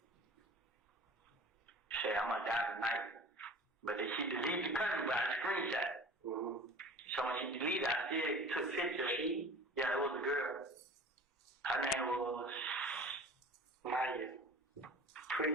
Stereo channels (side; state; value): both; normal; correlation 0.41